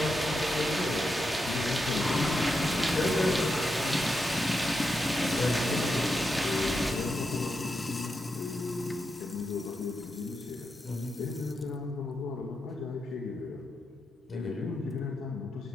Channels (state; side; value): normal; both; correlation 0.85